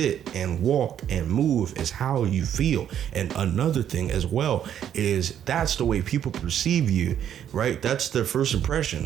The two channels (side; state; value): left; quieter; 9.8 dB